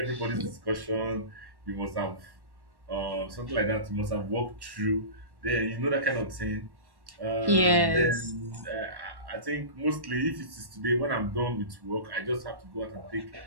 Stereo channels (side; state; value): left; late; 1.1 ms